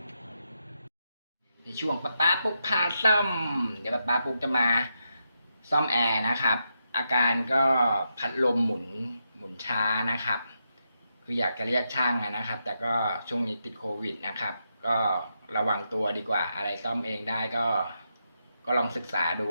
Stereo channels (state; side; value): inverted; both; correlation -0.84